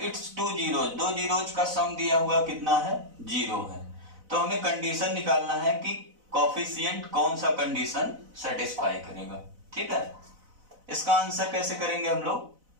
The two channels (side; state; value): left; late; 4.0 ms